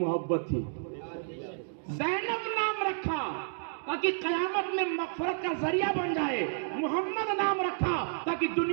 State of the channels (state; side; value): silent; left; digital silence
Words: تھی. زینب نام رکھا تاکہ قیامت میں مغفرت کا ذریعہ بن جائے. محمد نام رکھا تاکہ